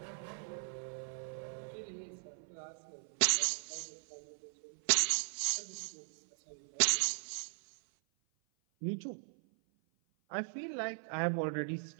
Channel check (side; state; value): left; silent; 52 dB below the other